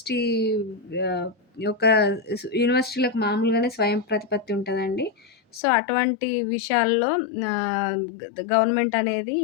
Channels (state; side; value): drops out; right; at 5.6 s